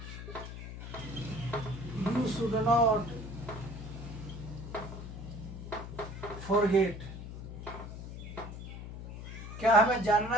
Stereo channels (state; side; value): noise; left; hum, 10 dB below the sound